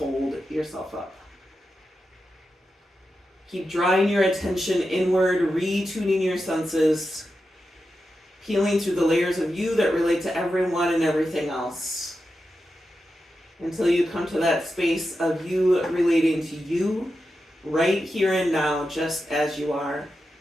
yourself up. Keep drawing your attention inward, retuning your senses. Peeling through the layers of you that relate to everyone and everything else. until you come to that space of you relating to you right here and now, just as you are.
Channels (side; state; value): both; normal; correlation 0.90